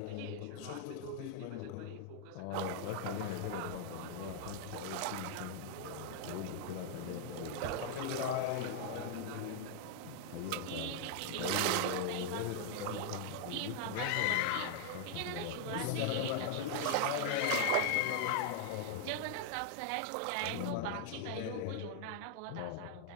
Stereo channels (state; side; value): different; both; correlation 0.00